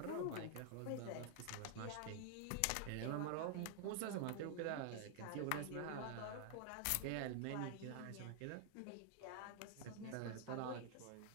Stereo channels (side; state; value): both; different; correlation 0.00